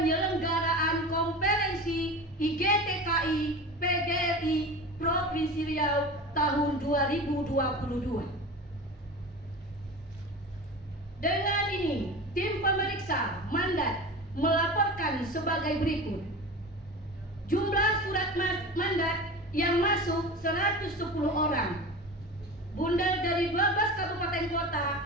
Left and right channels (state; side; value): normal; both; correlation 0.32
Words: konferensi IGTKI PGRI Provinsi Riau tahun 2022. Dengan ini, tim pemeriksa mandat melaporkan sebagai berikut. Jumlah surat mandat yang masuk 110 orang. Bundar dari 12 kabupaten kota.